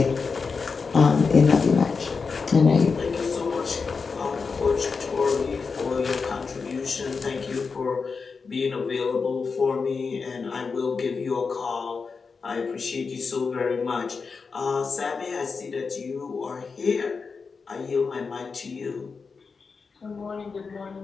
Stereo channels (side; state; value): right; quieter; 5.0 dB